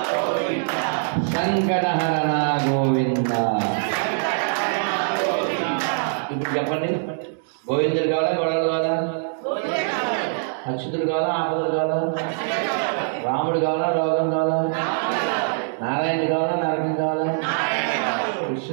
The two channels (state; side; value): silent; left; digital silence